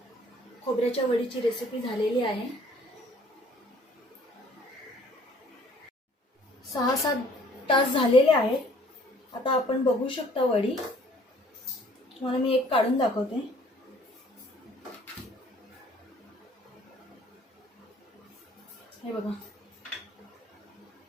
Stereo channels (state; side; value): normal; both; correlation 0.57